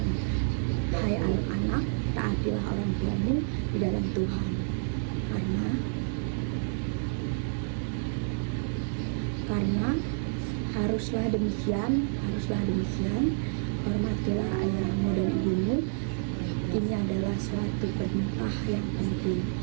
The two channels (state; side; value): silent; left; digital silence